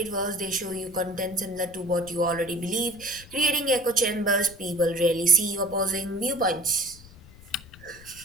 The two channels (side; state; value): left; noise; rumble, 20 dB below the sound